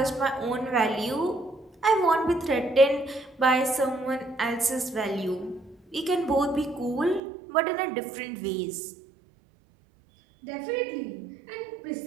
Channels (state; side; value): drops out; left; at 7.2 s